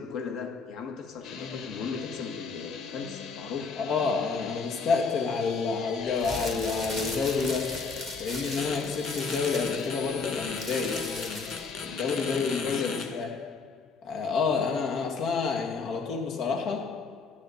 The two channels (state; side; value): quieter; right; 4.7 dB